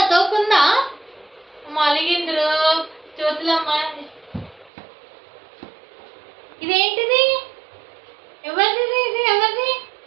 తోకుందా? అలిగింద్రు చోతులమ్మ. ఇదేంటిది? ఎవరిది? ఇది ఎవరిది?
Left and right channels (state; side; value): drops out; left; at 4.7 s